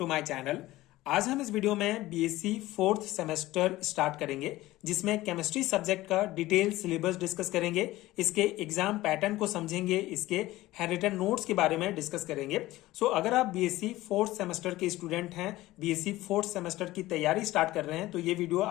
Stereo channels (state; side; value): quieter; right; 17.3 dB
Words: my channel. आज हम इस वीडियो में बीएससी फोर्थ सेमेस्टर स्टार्ट करेंगे, जिसमें केमिस्ट्री सब्जेक्ट का डिटेल सिलेबस डिस्कस करेंगे, इसके एग्जाम पैटर्न को समझेंगे, इसके हैंडरिटन नोट्स के बारे में डिस्कस करेंगे। अगर आप बीएससी फोर्थ सेमेस्टर के स्टूडेंट हैं, बीएससी फोर्थ सेमेस्टर की तैयारी स्टार्ट कर रहे हैं, तो ये वीडियो